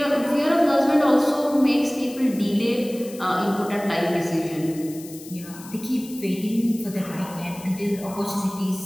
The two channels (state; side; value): noise; left; hiss, 17 dB below the sound